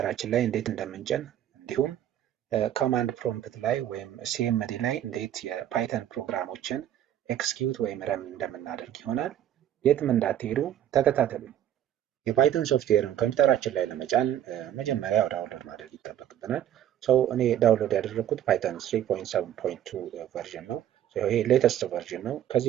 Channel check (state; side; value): quieter; left; 11.2 dB